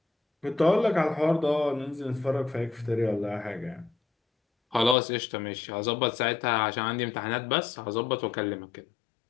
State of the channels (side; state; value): right; drops out; at 5.0 s